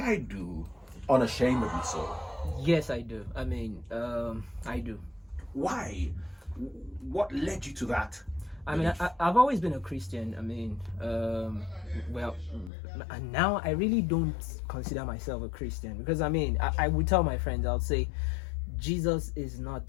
do, unashamedly so? Yes, I do. I mean, I do. Why? What led you to that? I mean, I've always been a Christian. I mean, well, and now I really don't consider myself a Christian because I mean, I would tell my friends, I would say, Jesus is not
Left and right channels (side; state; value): right; drops out; at 12.7 s